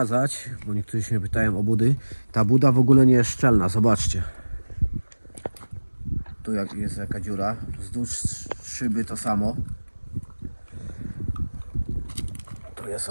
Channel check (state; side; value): inverted; both; correlation -1.00